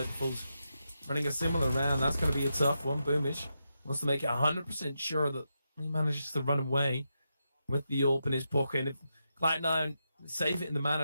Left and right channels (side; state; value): both; inverted; correlation -0.86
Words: running a similar round, that's going to be a tough one. Boomich wants to make it 100% sure that he manages to run away with the AWP in his pocket. And if Cloud9 save it in the